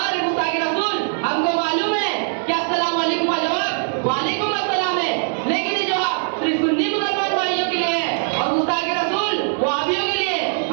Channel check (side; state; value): left; silent; 61 dB below the other